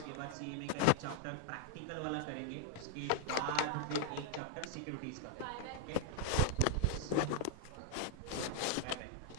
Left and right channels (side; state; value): both; different; correlation 0.00